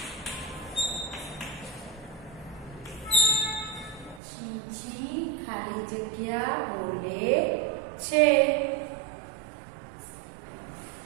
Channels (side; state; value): left; drops out; at 4.2 s